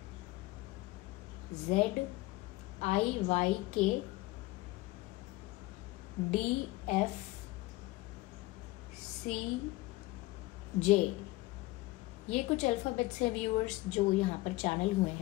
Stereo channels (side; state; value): right; quieter; 20.2 dB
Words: ये कुछ अल्फाबेट्स हैं व्यूअर्स जो यहाँ पर चैनल हुए